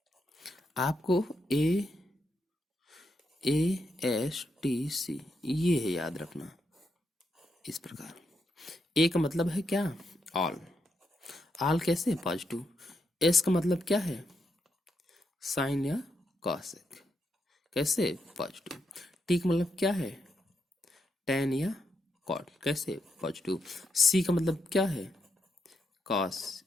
आपको ए एस टी सी ये है याद रखना इस प्रकार। ए का मतलब है क्या, ऑल, ऑल कैसे, पॉजिटिव। एस का मतलब क्या है, साइन या कॉसेक, कैसे, पॉजिटिव। टी का मतलब क्या है, टेन या कॉट, कैसे, पॉजिटिव। सी का मतलब क्या है, कॉस,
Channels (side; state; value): both; normal; correlation 0.81